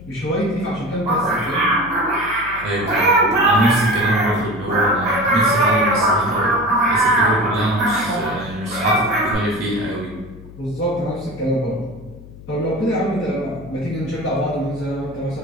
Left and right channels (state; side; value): noise; left; hum, 18 dB below the sound